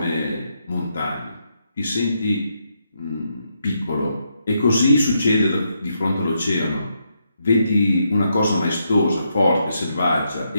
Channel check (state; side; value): inverted; both; correlation -0.79